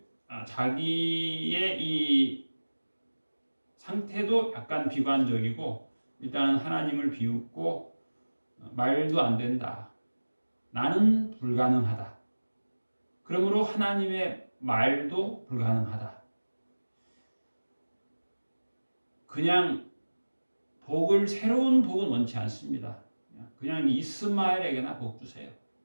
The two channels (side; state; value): both; inverted; correlation -1.00